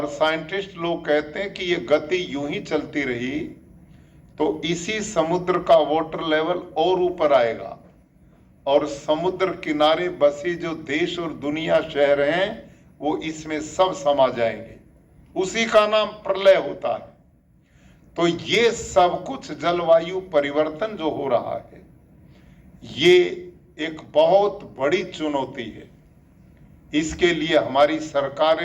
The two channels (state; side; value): identical; both; correlation 1.00